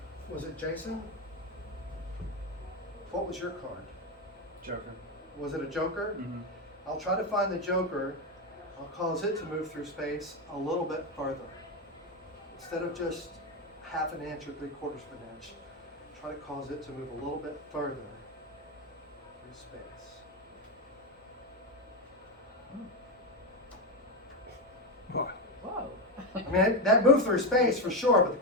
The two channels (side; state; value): both; normal; correlation 0.11